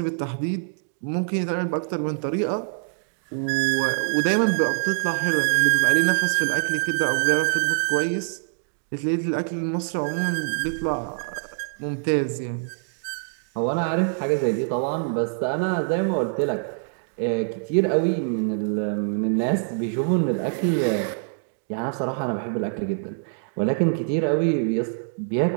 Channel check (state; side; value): silent; left; digital silence